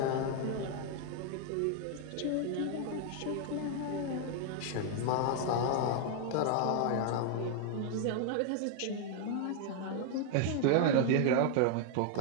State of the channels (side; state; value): both; different; correlation 0.00